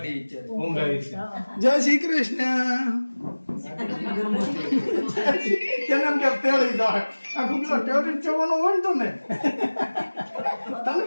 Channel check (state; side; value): inverted; both; correlation -1.00